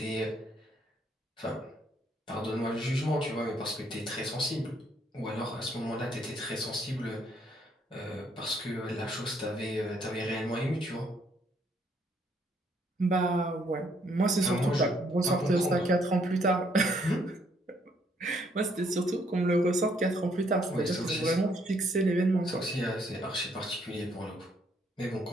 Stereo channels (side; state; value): both; normal; correlation 0.69